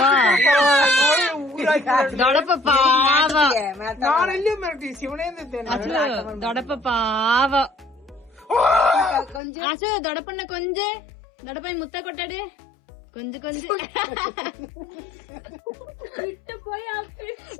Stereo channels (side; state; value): right; drops out; at 9.4 s